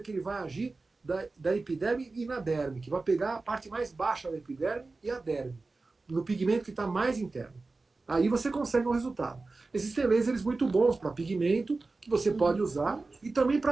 que ele vai agir da epiderme e na derme, que vai pegar a parte mais baixa da epiderme e a derme, no pigmento que está mais interno. Aí você consegue um resultado. Existem lasers muito bons para pigmento, que você pode usar, e também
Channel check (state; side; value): quieter; left; 3.6 dB